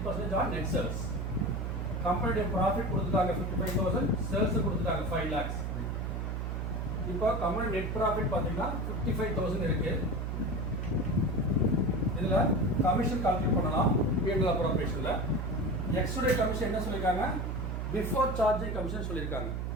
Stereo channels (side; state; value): right; noise; hum, 2 dB below the sound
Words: on net sales. கம்பெனியோட profit கொடுத்துட்டாங்க 55,000, sales கொடுத்துட்டாங்க 5 lakhs. இப்போ company net profit பார்த்தீங்கன்னா 55,000 இருக்கு. இதில் commission calculate பண்ணலாம். P&L அப்ரோப்ரியேஷனில் எக்ஸுடைய commission என்ன சொல்லியிருக்காங்க, பிஃபோர் சார்ஜிங் கமிஷன் சொல்லியிருக்காங்க.